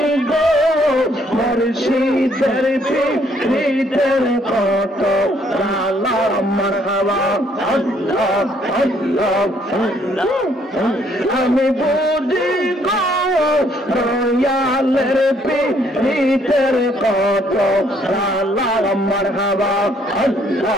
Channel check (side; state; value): both; normal; correlation 0.66